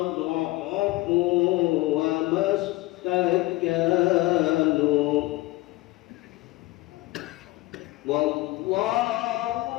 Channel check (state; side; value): quieter; right; 19.7 dB